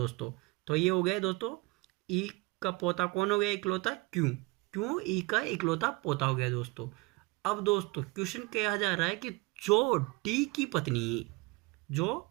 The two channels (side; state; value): left; quieter; 24.1 dB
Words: तो ये हो गया दोस्तों ई का पोता कौन हो गया, इकलौता क्यों ई का इकलौता पोता हो गया दोस्तों। अब दोस्तों क्वेश्चन कहा जा रहा है कि जो डी की पत्नी